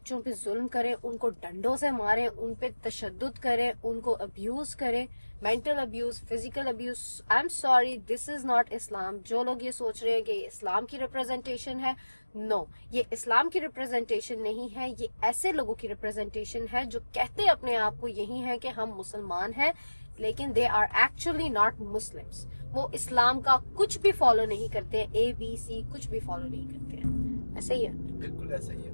पे जुल्म करें, उनको डंडों से मारें, उन पे तशद्दुद करें, उनको अब्यूज करें, mental abuse, physical abuse. I am sorry, this is not Islam. जो लोग ये सोच रहे हैं कि ये इस्लाम की रिप्रेजेंटेशन है, नो, ये इस्लाम की रिप्रेजेंटेशन नहीं है। ये ऐसे लोगों की रिप्रेजेंटेशन है जो कहते अपने आप को यही है कि हम मुसलमान हैं, लेकिन they are actually not Muslims. वो इस्लाम का कुछ भी फॉलो नहीं करते हैं, ABC कुछ भी फॉलो नहीं करते हैं। ऐसे ही है, बिल्कुल ऐसा ही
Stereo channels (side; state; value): both; inverted; correlation -1.00